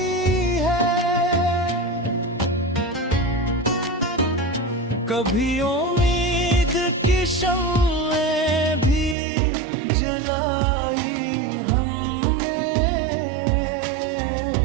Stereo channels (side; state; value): left; drops out; at 9.2 s